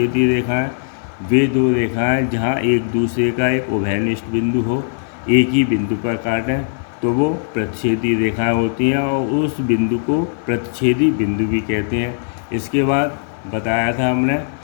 रेखाएं वे दो रेखाएं जहां एक दूसरे का एक उभयनिष्ठ बिंदु हो, एक ही बिंदु पर काटें तो वो प्रतिच्छेदी रेखाएं होती हैं और उस बिंदु को प्रतिच्छेदी बिंदु भी कहते हैं। इसके बाद बताया था हमने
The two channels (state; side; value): silent; right; 60 dB below the other